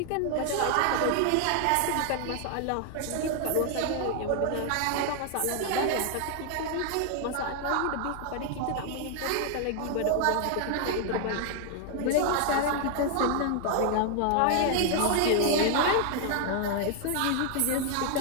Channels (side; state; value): both; different; correlation 0.00